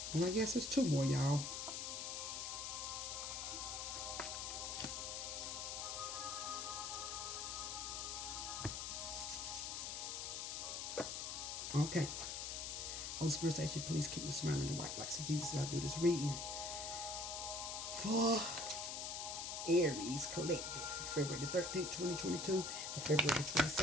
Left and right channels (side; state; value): left; noise; hiss, 4 dB below the sound